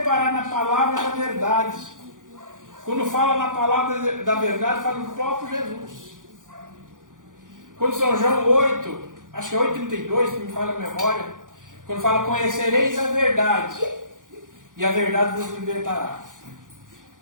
na palavra da verdade. Quando fala na palavra da verdade, fala do próprio Jesus. Quando São João 8, acho que é 8,32, que me fala a memória, quando fala: conhecereis a verdade, e a verdade vos libertará.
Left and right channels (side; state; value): left; late; 0.88 ms